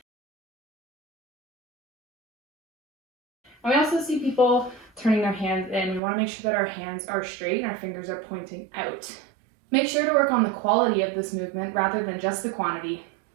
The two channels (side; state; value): left; drops out; at 6.0 s